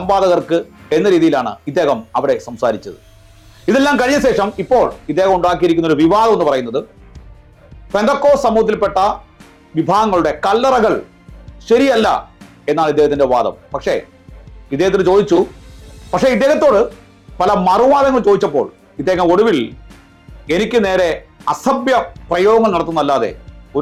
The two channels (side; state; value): both; identical; correlation 1.00